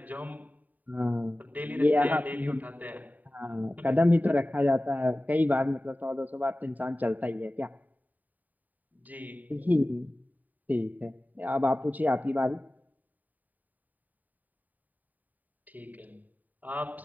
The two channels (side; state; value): left; late; 0.082 ms